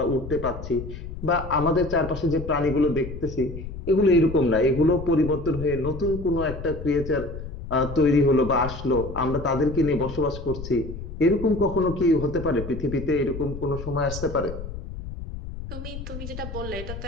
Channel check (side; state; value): left; noise; rumble, 9 dB below the sound